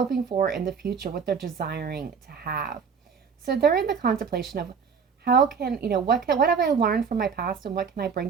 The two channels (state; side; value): quieter; left; 6.1 dB